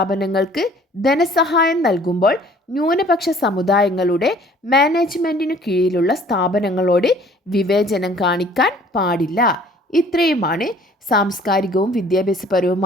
ധനസഹായം നൽകുമ്പോൾ ന്യൂനപക്ഷ സമുദായങ്ങളുടെ മാനേജ്മെൻറ്റിനു കീഴിലുള്ള സ്ഥാപനങ്ങളോട് വിവേചനം കാണിക്കാൻ പാടില്ല. ഇത്രയുമാണ് സാംസ്കാരികവും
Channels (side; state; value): both; normal; correlation 0.54